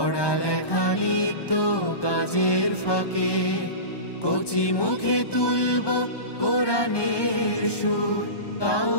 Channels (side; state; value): right; late; 1.2 ms